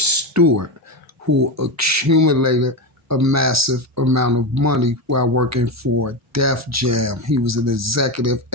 who accumulated a massive amount of money while working for Def Jam. He was an executive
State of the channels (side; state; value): both; normal; correlation 0.15